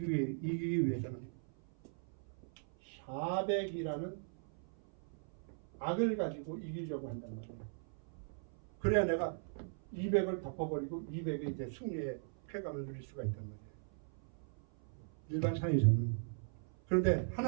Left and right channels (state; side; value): silent; left; 52 dB below the other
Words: 위해서는 400이라는 악을 가지고 이기려고 한단 말이에요. 그래야 내가 200을 덮어버리고 200의 이제 승리의 쾌감을 누릴 수가 있단 말이에요. 일반사에서는. 그런데